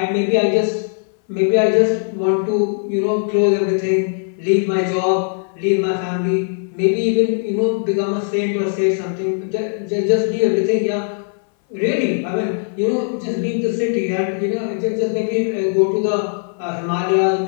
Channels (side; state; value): right; silent; 60 dB below the other